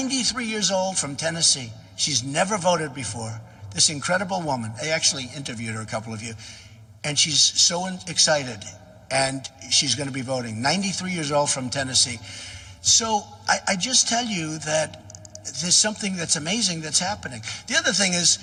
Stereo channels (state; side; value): identical; both; correlation 1.00